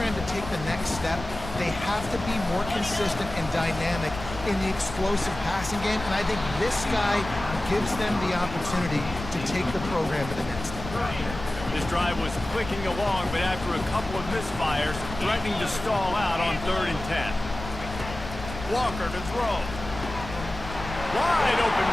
to take the next step, they have to be more consistent and dynamic in the explosive passing game, and I think this guy gives them the opportunity to take the program to the next step. This drive was clicking along, but after a couple of misfires, threatening to stall out on 3rd and 10. Walker to throw. Wide open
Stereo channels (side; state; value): left; noise; rumble, 11 dB below the sound